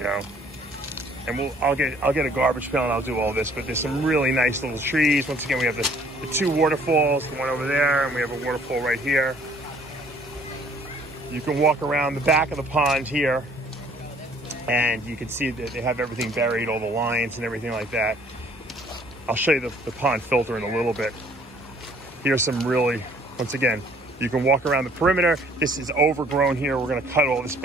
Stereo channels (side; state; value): both; normal; correlation 0.58